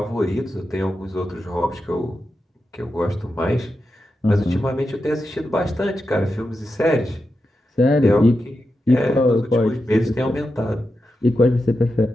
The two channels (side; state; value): both; normal; correlation 0.89